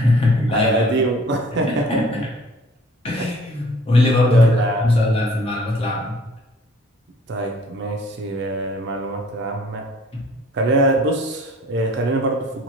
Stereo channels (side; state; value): both; normal; correlation 0.54